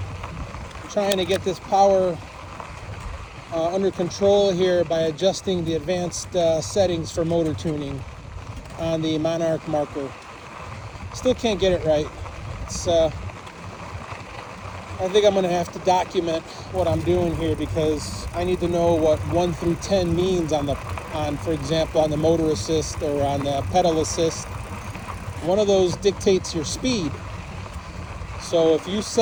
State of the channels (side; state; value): both; identical; correlation 1.00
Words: trying to get this power under control here by adjusting the advanced settings for motor tuning on the Monarc Marker. Still can't get it right. I think I'm going to have to document what I'm doing here because I need to know what 1 through 10 means for example, on the motor assist or on the pedal assist. One of those dictates your speed. So if you